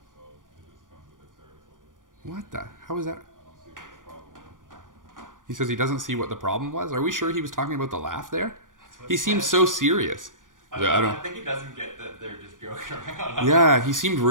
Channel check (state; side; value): late; left; 0.89 ms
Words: so it just comes with the territory. What the? How is that? I don't see what the problem is. He says he doesn't see what the problem was. Are we sure he was talking about the laugh there? He seems so serious. I think he doesn't get that they're just joking around. Yeah, he seemed